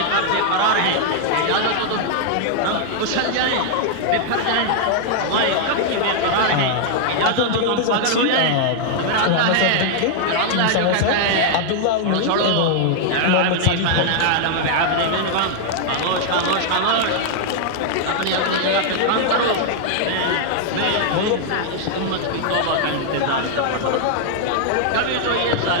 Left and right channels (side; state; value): both; different; correlation 0.00